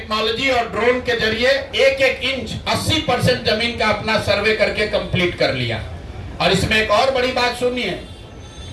और ड्रोन के जरिए 1-1 इंच 80% जमीन का अपना सर्वे करके कंप्लीट कर लिया। और इसमें एक और बड़ी बात सुनिए,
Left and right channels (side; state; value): both; identical; correlation 1.00